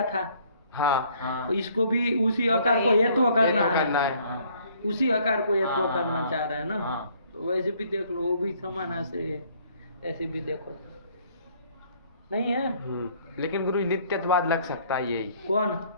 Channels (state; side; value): inverted; both; correlation -0.61